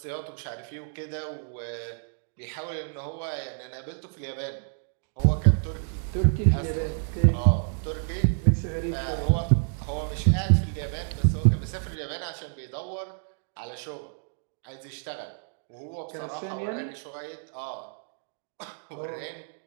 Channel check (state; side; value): silent; left; digital silence